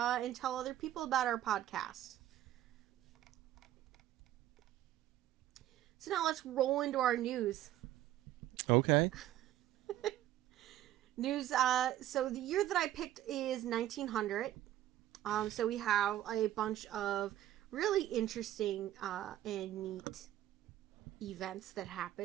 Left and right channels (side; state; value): left; quieter; 13.1 dB